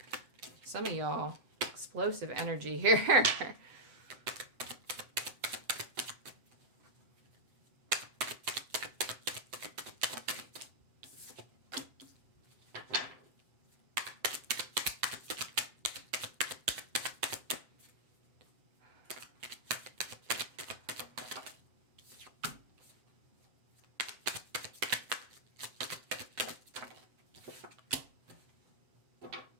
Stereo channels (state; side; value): late; left; 7.8 ms